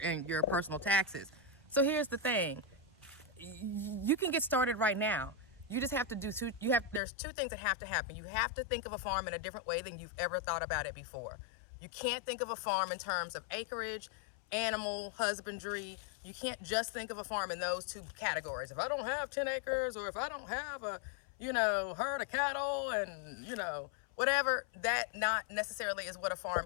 personal taxes. So here's the thing. You can get started right now. You just have to do there's two things that have to happen. You have to think of a farm in a different way than you've ever thought about it before. You can't think of a farm in terms of acreage, animal husbandry. You can't just think of a farm in those two categories. If I don't have 10 acres, or if I don't have a, herd of cattle and, whatever, that not necessarily is what a farm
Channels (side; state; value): right; drops out; at 7.0 s